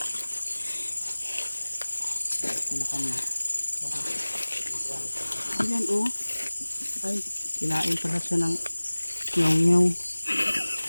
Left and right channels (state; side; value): inverted; both; correlation -1.00